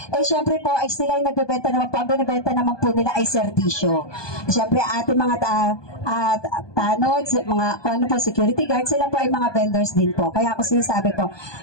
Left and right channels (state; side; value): late; right; 1.2 ms